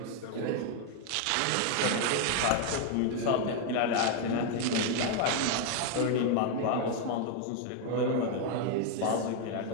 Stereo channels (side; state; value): both; different; correlation 0.00